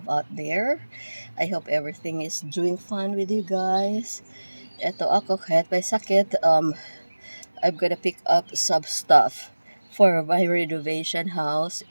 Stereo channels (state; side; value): inverted; both; correlation -1.00